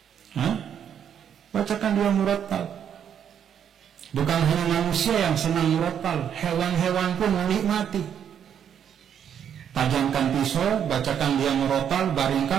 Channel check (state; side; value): quieter; left; 8.7 dB